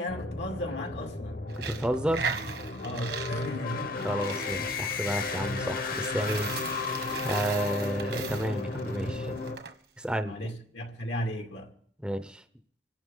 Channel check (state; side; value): normal; both; correlation 0.56